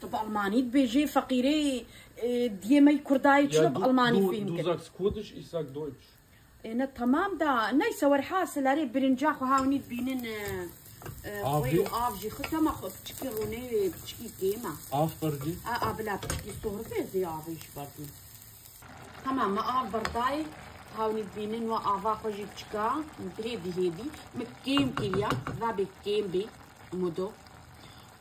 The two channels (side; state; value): both; identical; correlation 1.00